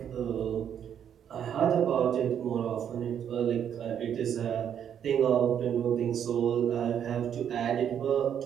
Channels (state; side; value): quieter; left; 8.9 dB